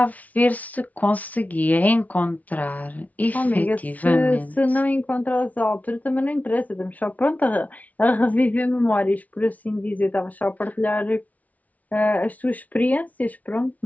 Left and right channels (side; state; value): right; late; 0.072 ms